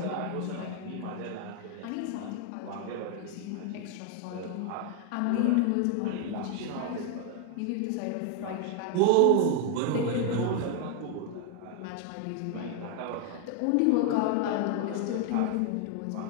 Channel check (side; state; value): both; different; correlation 0.00